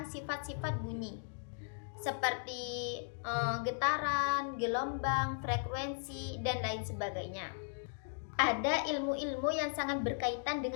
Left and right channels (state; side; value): silent; right; digital silence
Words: sifat-sifat bunyi seperti getaran, gelombang, frekuensi, dan lain sebagainya. Ada ilmu-ilmu yang sangat berkaitan